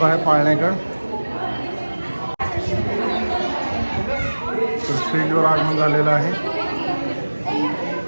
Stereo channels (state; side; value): inverted; both; correlation -1.00